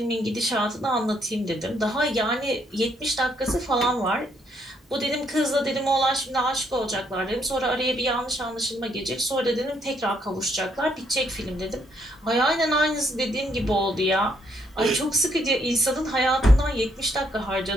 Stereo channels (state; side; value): normal; both; correlation 0.72